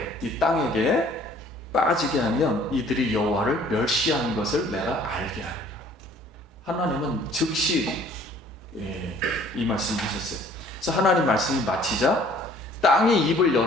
이 땅에게 빠지게 하면 이들이 여호와를 멸시하는 것을 내가 알게 하리라. 하나님은 즉시 이 말씀을 하셨어요. 그래서 하나님 말씀이 마치자 땅이 입을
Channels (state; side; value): normal; both; correlation 0.56